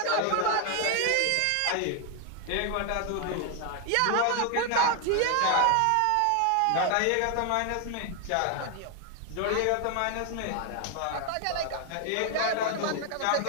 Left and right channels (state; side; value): different; both; correlation 0.00